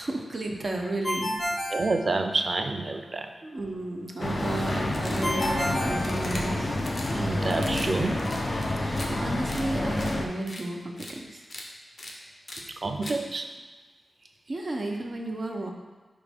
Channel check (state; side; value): normal; both; correlation 0.93